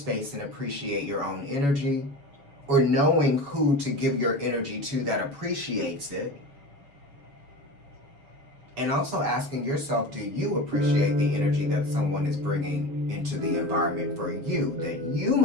and appreciate your own energy. Or knowing who to give your energy to that appreciates it. And also asking yourself, do you appreciate the energy that someone is bringing into the environment for you that you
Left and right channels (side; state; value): left; late; 7.1 ms